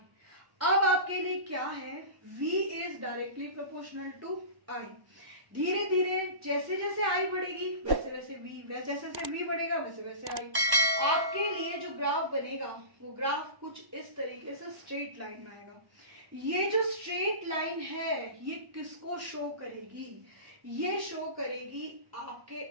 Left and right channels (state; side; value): late; left; 1.1 ms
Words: अब आपके लिए क्या है, V is directly proportional to I। धीरे धीरे जैसे जैसे आई बढ़ेगी वैसे वैसे v, जैसे जैसे v बढ़ेगा वैसे वैसे आई। आपके लिए जो ग्राफ बनेगा वो ग्राफ कुछ इस तरीके से स्ट्रेट लाइन में आएगा। ये जो स्ट्रेट लाइन है ये किसको शो करेगी? ये शो करेगी आपके